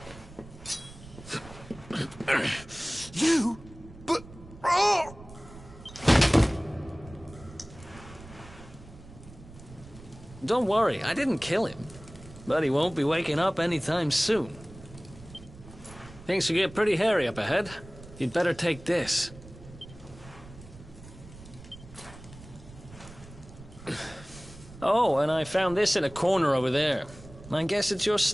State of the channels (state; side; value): noise; right; rumble, 18 dB below the sound